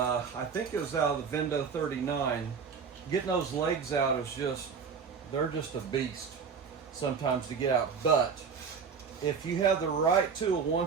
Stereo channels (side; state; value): left; quieter; 6.0 dB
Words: think it was out of the Vendo 39. Getting those legs out is just, they're just a beast sometimes to get out. But if you have the right tool,